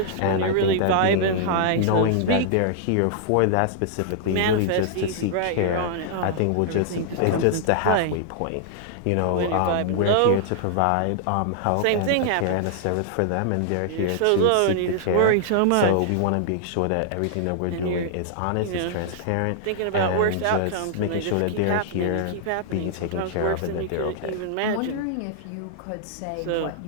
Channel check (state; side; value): different; both; correlation -0.01